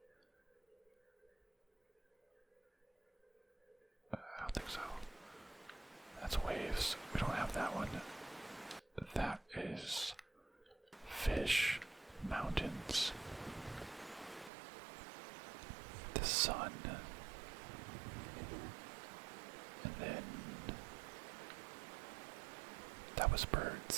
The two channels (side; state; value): left; drops out; at 14.5 s